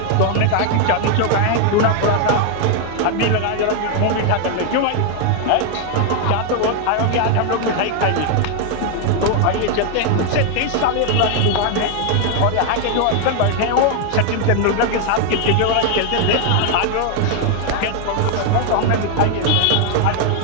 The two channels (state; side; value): different; both; correlation 0.00